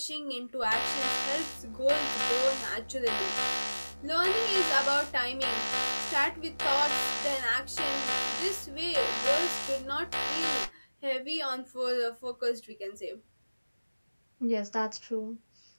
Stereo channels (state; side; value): inverted; both; correlation -1.00